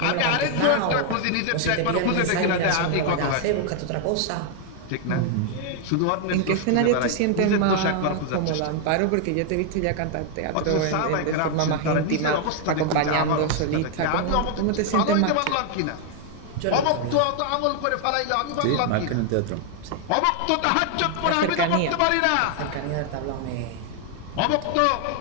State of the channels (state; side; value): different; both; correlation 0.00